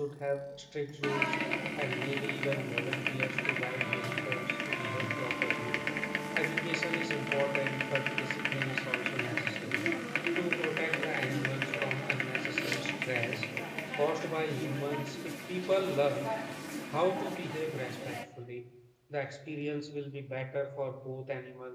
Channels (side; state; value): both; identical; correlation 1.00